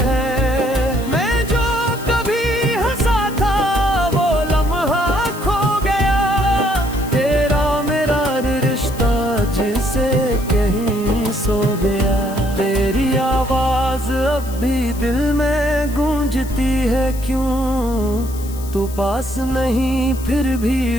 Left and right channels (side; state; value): left; noise; hiss, 16 dB below the sound